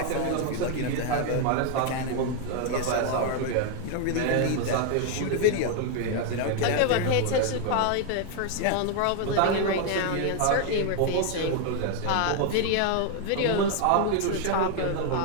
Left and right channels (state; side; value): different; both; correlation 0.01